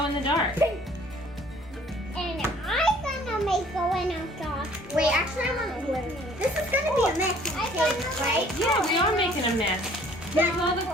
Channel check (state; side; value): normal; both; correlation 0.56